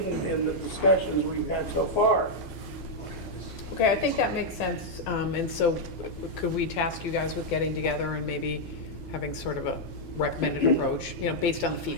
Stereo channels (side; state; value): both; normal; correlation -0.03